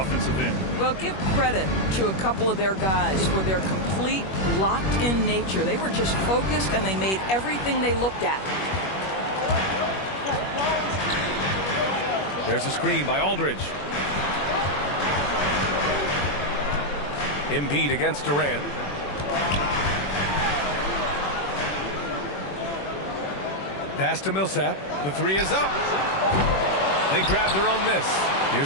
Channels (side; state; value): right; late; 21 ms